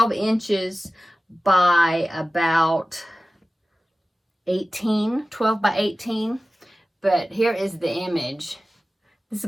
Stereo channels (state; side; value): normal; both; correlation 0.96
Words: inches by about 12 by 18. But here is the image. This is